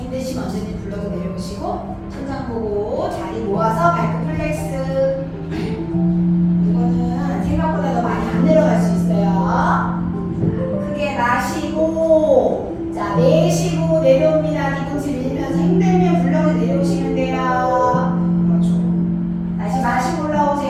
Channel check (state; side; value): identical; both; correlation 1.00